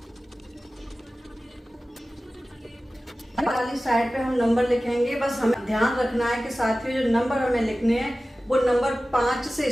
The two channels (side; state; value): both; normal; correlation 0.96